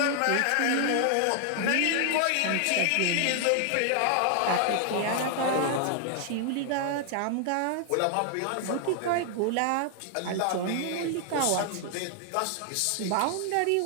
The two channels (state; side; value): different; both; correlation 0.00